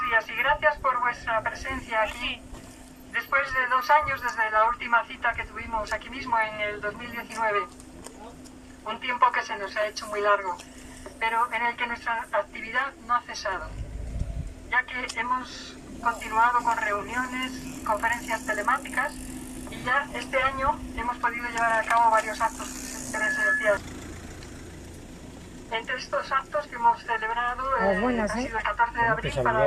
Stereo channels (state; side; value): identical; both; correlation 1.00